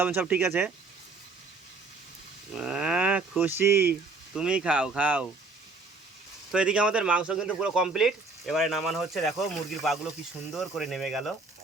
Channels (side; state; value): left; quieter; 3.6 dB